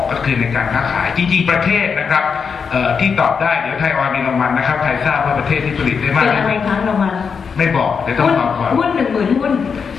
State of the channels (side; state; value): right; quieter; 6.0 dB